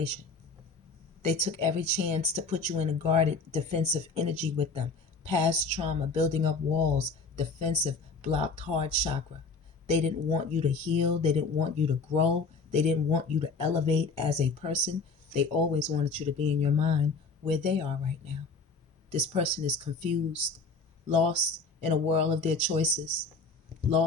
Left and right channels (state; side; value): quieter; right; 4.1 dB